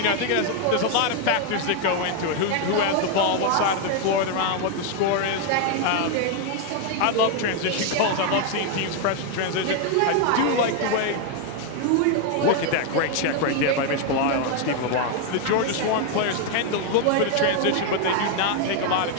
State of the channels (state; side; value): different; both; correlation 0.01